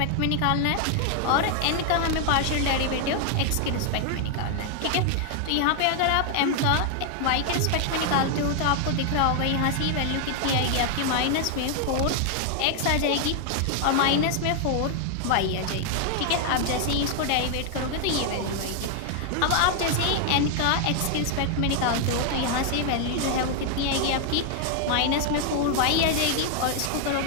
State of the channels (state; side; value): different; both; correlation 0.00